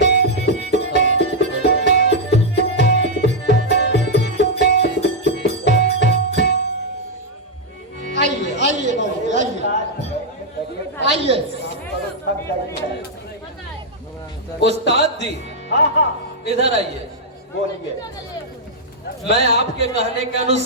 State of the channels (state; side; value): normal; both; correlation -0.03